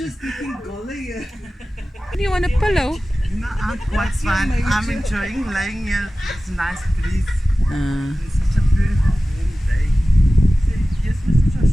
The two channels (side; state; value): both; normal; correlation 0.96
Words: Do you want a pillow? no, I'm quite fine. I'm enjoying laying here. It's a nice breeze. It's such a beautiful warm day. Yes, Mr.